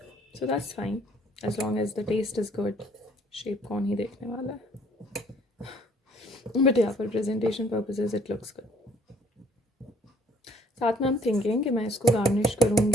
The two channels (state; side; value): normal; both; correlation 0.59